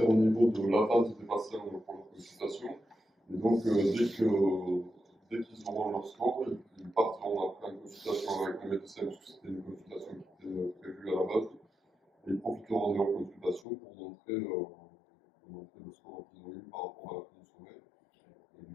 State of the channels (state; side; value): drops out; right; at 13.7 s